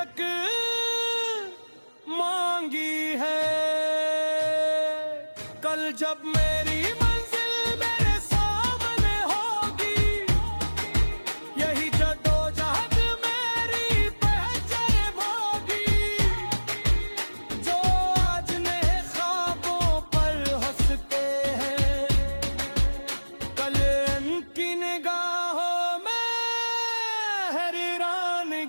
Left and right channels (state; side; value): inverted; both; correlation -1.00